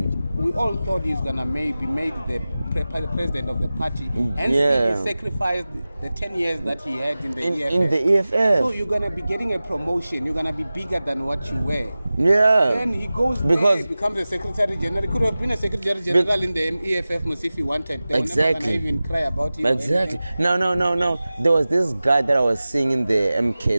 We all thought he was going to maybe made the president of the party. Hence, he sacrificed the 10 years that he had in the EFF. In the EFF. So you're going to be getting a promotion. You're going to be bigger than what you were. Yeah. Then he goes there, he becomes a secretary general. He could have been a secretary general in the EFF if he wanted. They were never going to even cry about him. Exactly. No. There was this guy that I was seeing in the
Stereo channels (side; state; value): both; inverted; correlation -0.96